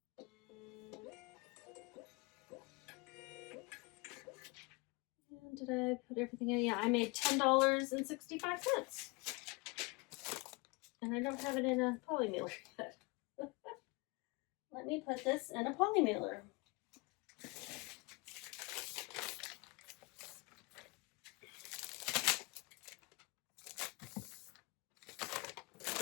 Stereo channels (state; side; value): quieter; right; 27.7 dB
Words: And did I put everything in? Yeah, I made $10.65. And I don't have it in a poly mailer yet. Let me put this in a poly mailer.